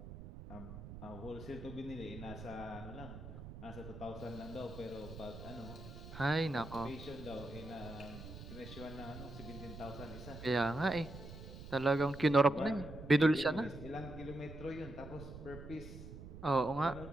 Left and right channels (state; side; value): noise; right; rumble, 12 dB below the sound